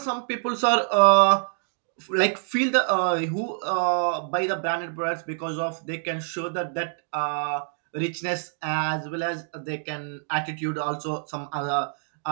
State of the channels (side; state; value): left; silent; digital silence